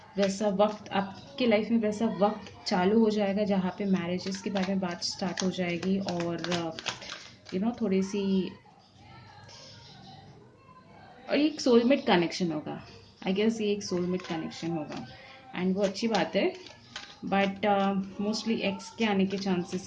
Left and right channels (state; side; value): identical; both; correlation 1.00